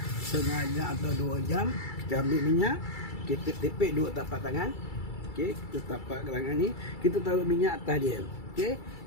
setengah jam atau 2 jam, kita ambil minyak, kita tepek 2 tapak tangan. Okey, kita tapak tangan ni, kita taruh minyak atas dia. Okey,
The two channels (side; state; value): right; late; 2.3 ms